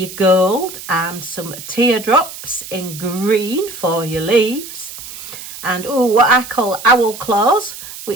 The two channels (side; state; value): right; noise; hiss, 13 dB below the sound